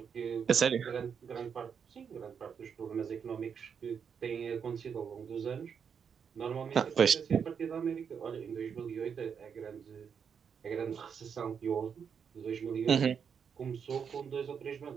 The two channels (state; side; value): quieter; left; 7.0 dB